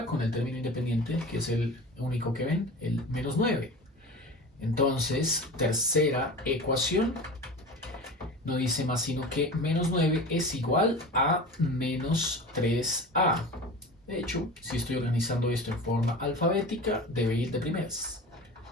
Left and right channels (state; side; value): normal; both; correlation 0.33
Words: con el término independiente, que es el único que ven, el menos 9. Entonces, tercera ecuación no dice más sino que menos 9 es igual a menos 3a. De hecho, si estoy organizando esto en forma alfabética, debe ir de primeras.